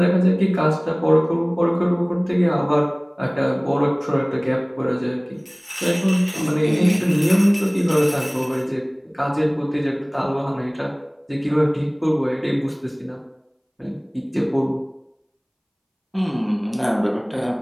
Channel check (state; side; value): identical; both; correlation 1.00